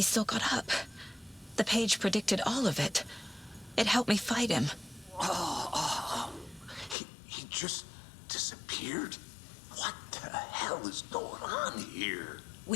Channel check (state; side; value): drops out; right; at 7.0 s